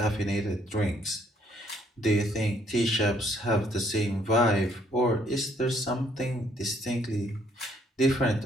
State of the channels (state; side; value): normal; both; correlation 0.67